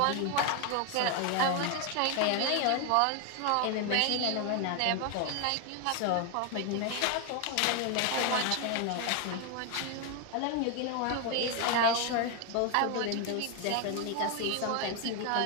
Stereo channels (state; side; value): different; both; correlation 0.01